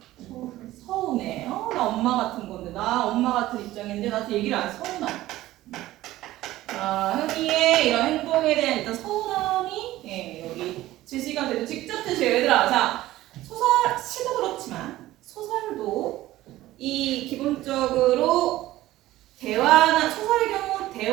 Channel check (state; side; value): quieter; left; 15.9 dB